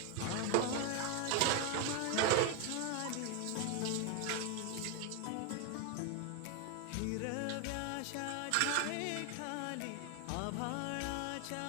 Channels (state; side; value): different; both; correlation 0.01